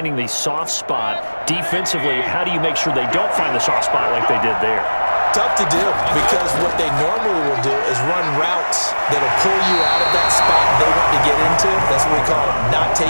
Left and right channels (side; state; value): both; inverted; correlation -1.00